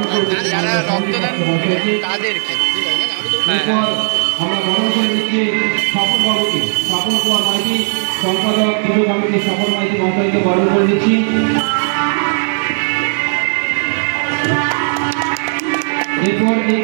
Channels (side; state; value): left; silent; digital silence